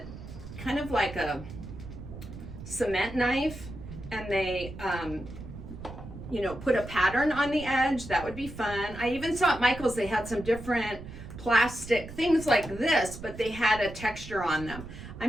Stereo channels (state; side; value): noise; right; rumble, 12 dB below the sound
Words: kind of like a cement knife, and they, you know, put a pattern on the edge. That would be fun. I even saw at Michael's, they had some different plastic things like this, but they had a texture on them.